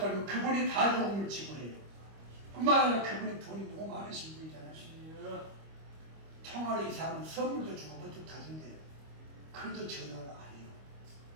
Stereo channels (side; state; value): left; late; 25 ms